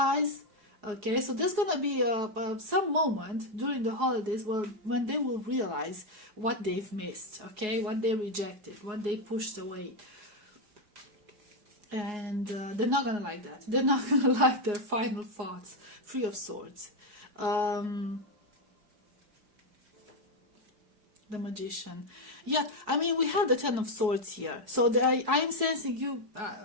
okay? So there's gonna be some moment during the holidays when they will realize what they've missed, okay? What they rejected, what they pushed away. And they're not gonna like that. They're not gonna like their final thoughts. Three of Swords. The Magician. Yeah, I mean, we have the Ten of Swords here. So I'm sensing you.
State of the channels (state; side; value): late; left; 4.7 ms